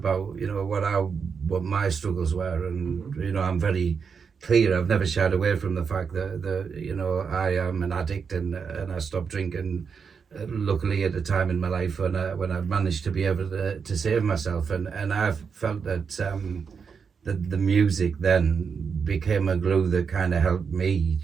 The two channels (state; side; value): quieter; left; 6.0 dB